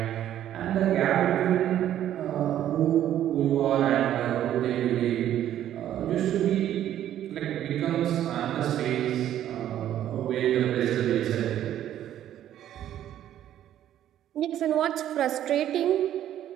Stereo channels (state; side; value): quieter; left; 11.5 dB